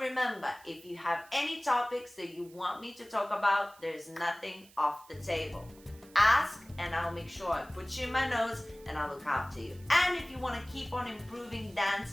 if you have any topics that you want me to talk about, there's nothing off the table. Ask and I'll make sure I put you in my notes and I'll look after you. And if you want to keep on improving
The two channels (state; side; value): noise; right; hiss, 25 dB below the sound